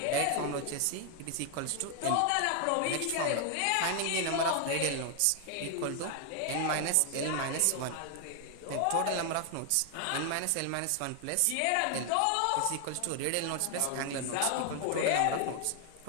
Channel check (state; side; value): different; both; correlation 0.00